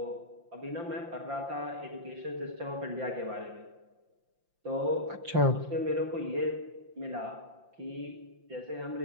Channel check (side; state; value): left; late; 5.8 ms